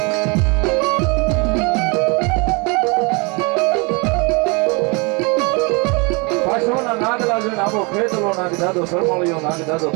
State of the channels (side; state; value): left; quieter; 30.5 dB